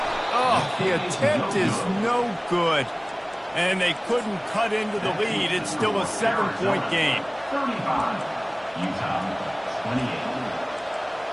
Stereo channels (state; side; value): identical; both; correlation 1.00